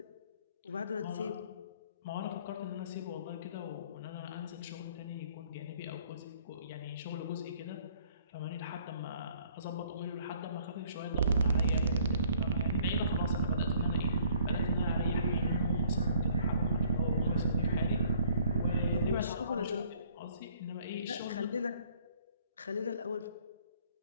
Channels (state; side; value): inverted; both; correlation -0.58